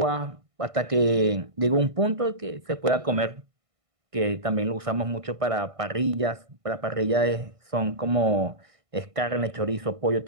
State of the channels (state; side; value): late; left; 1.5 ms